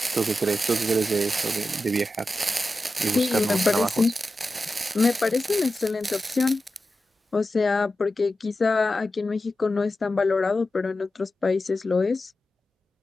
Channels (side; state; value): both; normal; correlation 0.92